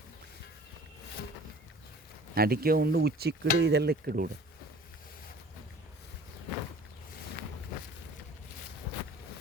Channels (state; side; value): normal; both; correlation 0.47